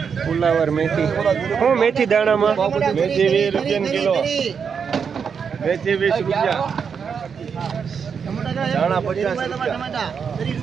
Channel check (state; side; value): quieter; left; 6.5 dB